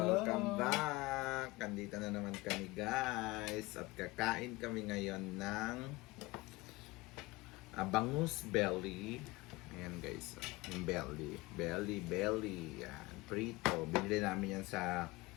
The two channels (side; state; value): right; quieter; 21.7 dB